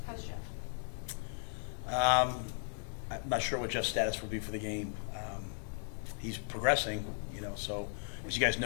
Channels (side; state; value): right; silent; 53 dB below the other